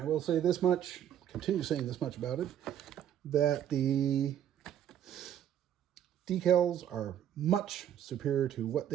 will say this much, continue saying this much about it, that the decals are much superior to what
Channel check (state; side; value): quieter; left; 10.3 dB